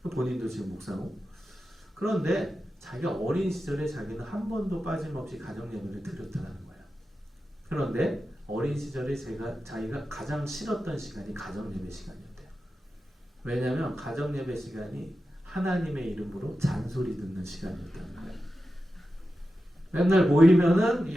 본인도 지금 목사고. 그런데 자기가 어린 시절에 자기는 한 번도 빠짐없이 가정 예배를 드렸다는 거예요. 그런데 어린 시절에 자기가 가장 싫었던 시간이 가정 예배 시간이었대요. 왜냐하면 가정 예배 시간이 하나님의 이름으로 잔소리 듣는 시간이었다는 거예요. 맨날 모이면은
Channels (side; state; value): both; normal; correlation 0.92